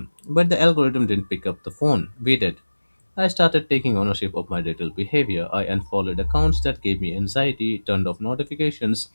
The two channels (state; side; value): inverted; both; correlation -1.00